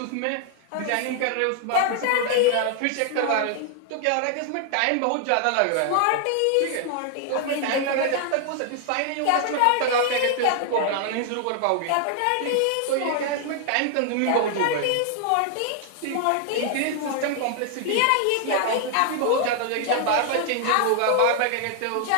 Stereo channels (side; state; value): both; different; correlation 0.00